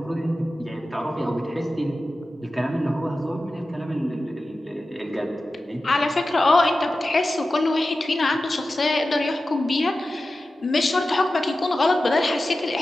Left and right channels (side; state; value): both; normal; correlation 0.94